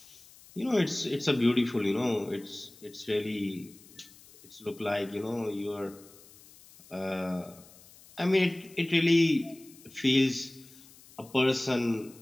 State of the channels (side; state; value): left; noise; hiss, 23 dB below the sound